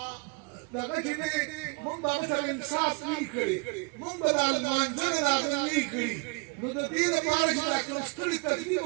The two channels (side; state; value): left; quieter; 30.2 dB